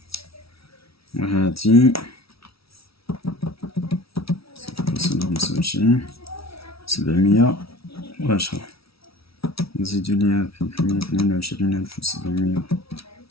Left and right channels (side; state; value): right; late; 0.76 ms